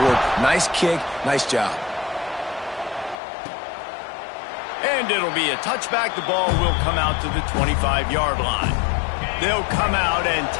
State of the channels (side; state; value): right; drops out; at 3.2 s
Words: Nice kick, nice job. And it'll be a touchback. The ball will come out to the 25-yard line. They'll come out and